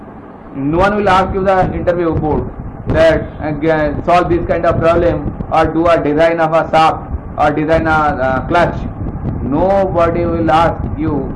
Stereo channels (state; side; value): identical; both; correlation 1.00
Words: No one will ask you the interview board that solve this kind of problem or do a design of a shaft or design a clutch. Nobody will ask you